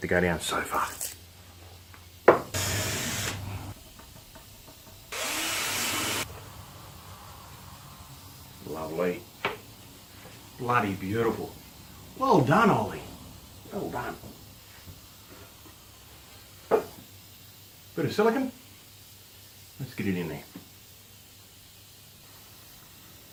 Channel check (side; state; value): both; identical; correlation 1.00